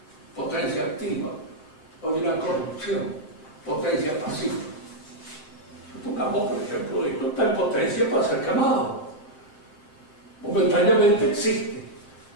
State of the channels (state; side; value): late; right; 7.5 ms